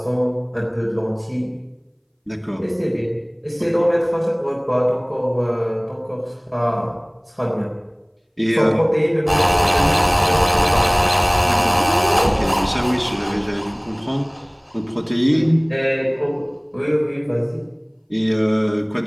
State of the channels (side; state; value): both; identical; correlation 1.00